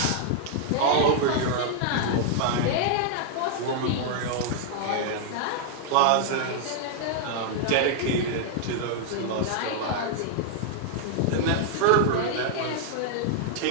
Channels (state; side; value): different; both; correlation -0.01